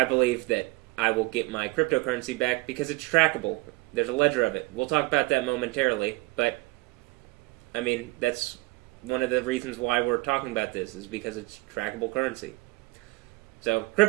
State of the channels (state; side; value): quieter; left; 22.6 dB